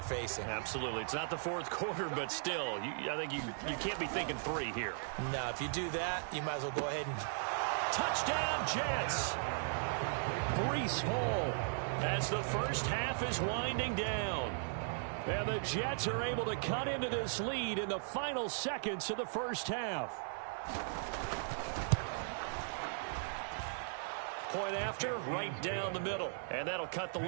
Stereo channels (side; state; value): left; silent; 53 dB below the other